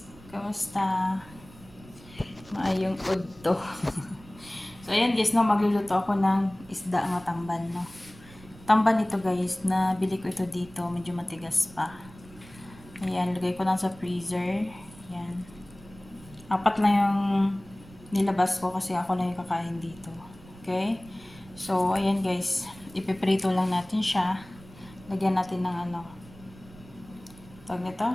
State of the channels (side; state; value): right; noise; rumble, 21 dB below the sound